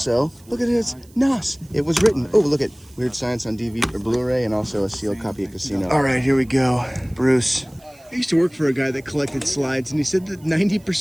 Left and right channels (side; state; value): right; noise; hiss, 28 dB below the sound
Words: look at it, it's Nas. It was written, oh, look at Weird Science on DVD or Blu-ray, and also a sealed copy of Casino. All right, here we go. Bruce. I used to work for a guy that collected slides, and he said that